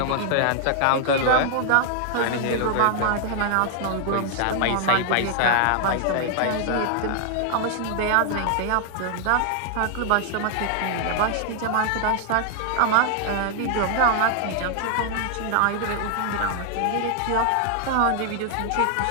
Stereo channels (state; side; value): different; both; correlation 0.00